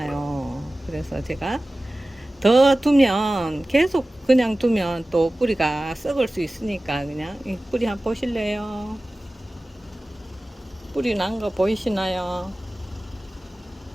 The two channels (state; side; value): normal; both; correlation 0.97